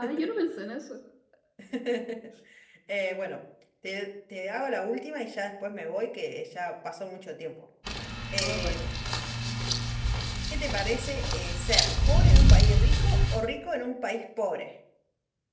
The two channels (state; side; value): identical; both; correlation 1.00